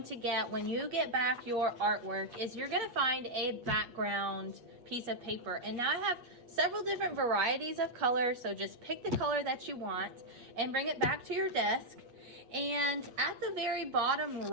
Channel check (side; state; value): left; late; 8.5 ms